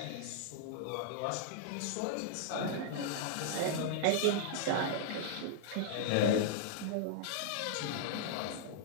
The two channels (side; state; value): both; different; correlation -0.01